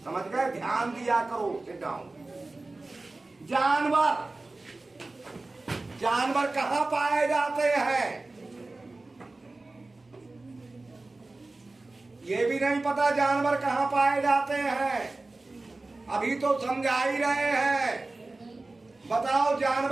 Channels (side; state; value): left; quieter; 3.2 dB